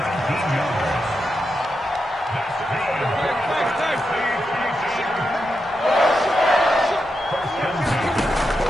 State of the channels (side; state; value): both; normal; correlation 0.86